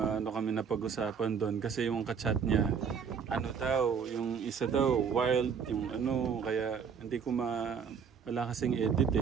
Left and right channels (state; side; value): quieter; left; 6.6 dB